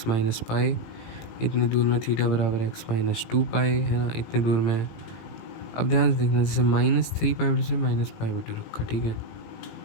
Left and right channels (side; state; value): right; late; 18 ms